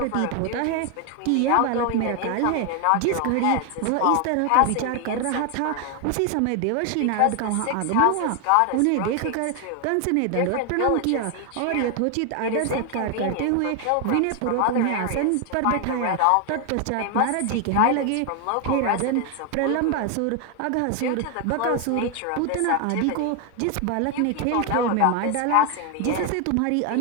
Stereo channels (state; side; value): different; both; correlation 0.01